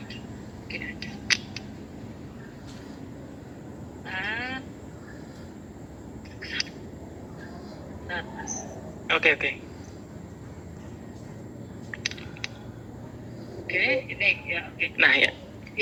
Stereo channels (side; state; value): both; identical; correlation 1.00